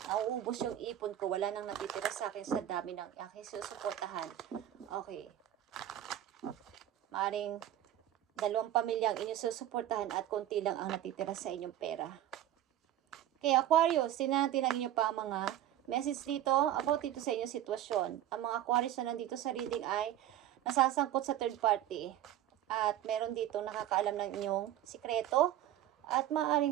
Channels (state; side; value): quieter; left; 12.3 dB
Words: nauubos yung ipon ko, wala nang natitira sa akin sa dami ng aking susuportahan. Okay. Maaring 2 pamilyang inyong susuportahan at konti lang ang natitira sa inyong pera. Okay, Aquarius, tingnan natin ang inyong pa mga message dito about dito sa inyong sitwasyon. Ang mga Aquarius na nandito sa reading ay nasasangkot sa third party. At meron dito nakakaalam ng inyong sikreto. At